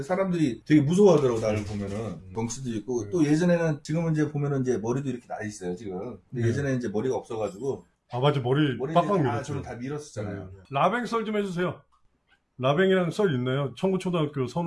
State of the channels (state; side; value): identical; both; correlation 1.00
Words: 사람들이 되게 무서워하더라고. 나를 보면은 덩치도 있고 또 예전에는 지금은 이제 보면은 이제 머리도 이렇게 나 있어요 지금. 근데 예전에 이제 머리가 없어가지고 맞아. 머리 빡빡 밀었죠. 저는 다 밀었었잖아요. 라뱅 썰 좀 해주세요. 라뱅이랑 썰 있나요? 청구초등학교